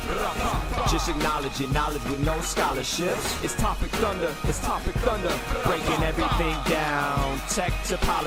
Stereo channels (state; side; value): identical; both; correlation 1.00